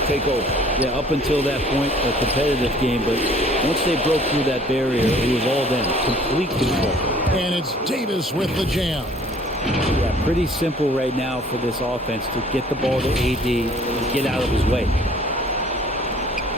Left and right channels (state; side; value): normal; both; correlation 0.54